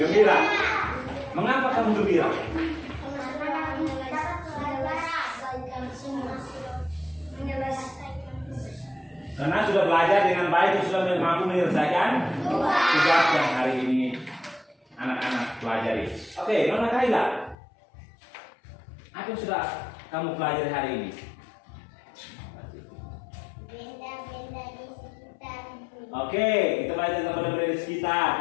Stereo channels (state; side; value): drops out; right; at 17.6 s